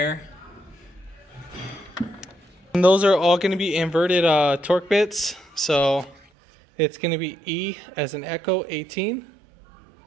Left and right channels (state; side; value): drops out; left; at 6.2 s